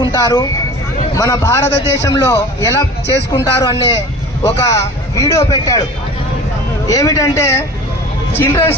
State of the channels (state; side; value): normal; both; correlation 0.40